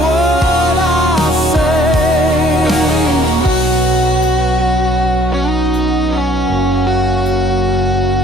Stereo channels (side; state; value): both; normal; correlation 0.60